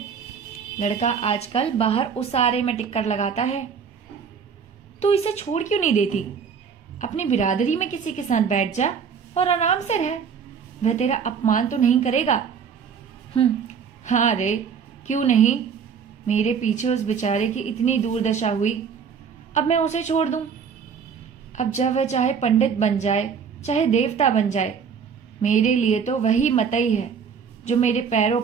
लड़का आजकल बाहर उसारे में टिक्कर लगाता है। तू इसे छोड़ क्यों नहीं देती? अपनी बिरादरी में किसी के साथ बैठ जा और आराम से रह। वह तेरा अपमान तो नहीं करेगा। हाँ रे, क्यों नहीं? मेरे पीछे उस बेचारे की इतनी दुर्दशा हुई, अब मैं उसे छोड़ दूं? अब जब वह चाहे पंडित बन जाए चाहे देवता बन जाए, मेरे लिए तो वही मतई है जो मेरे पैरों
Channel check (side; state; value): left; quieter; 6.6 dB